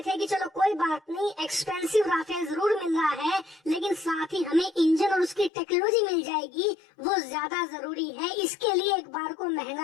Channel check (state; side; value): drops out; right; at 5.5 s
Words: थे कि चलो कोई बात नहीं, एक्सपेंसिव राफेल जरूर मिल रहा है, लेकिन साथ ही हमें इंजन और उसकी टेक्नोलॉजी मिल जाएगी, वो ज्यादा जरूरी है, इसके लिए एक बार को